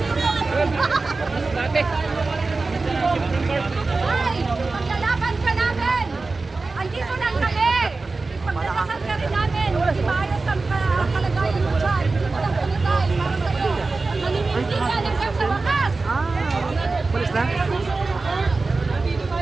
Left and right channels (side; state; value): left; quieter; 3.7 dB